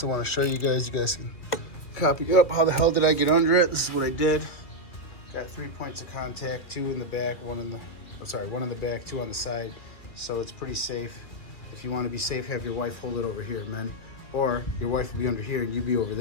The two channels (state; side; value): late; right; 2.5 ms